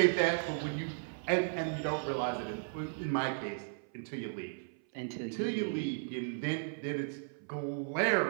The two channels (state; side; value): silent; left; 54 dB below the other